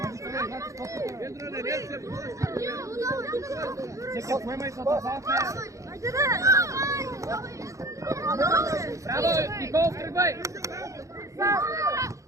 Сега поемай с атака. Браво, Никол, тръгвай!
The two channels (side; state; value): left; late; 0.15 ms